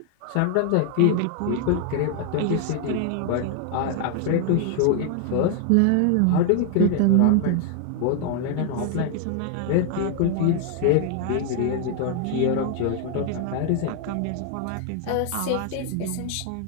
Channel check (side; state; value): both; different; correlation 0.00